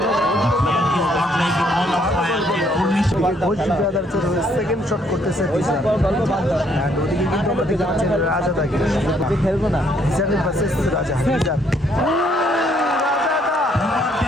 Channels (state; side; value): normal; both; correlation 0.68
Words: Ghosh ব্রাদার্সের হয়ে সেকেন্ড শট করতেছে অ্যান্ড ওদিকে কিন্তু আমরা দেখতে পাচ্ছি রাজাদাকে খেলবো না ভার্সেস রাজা।